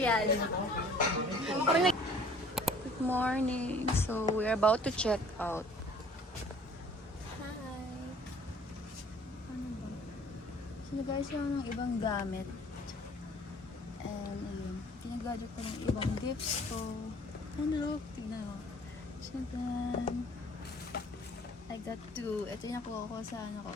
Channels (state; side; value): normal; both; correlation 0.53